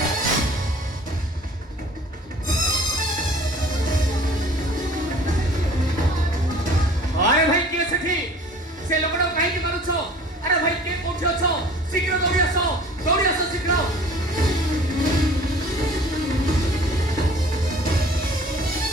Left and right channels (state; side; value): normal; both; correlation 0.48